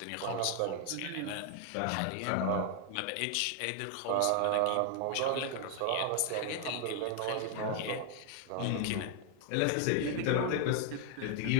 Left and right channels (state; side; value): different; both; correlation 0.00